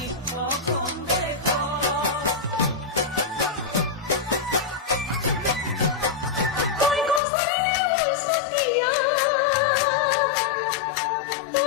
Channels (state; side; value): drops out; right; at 7.2 s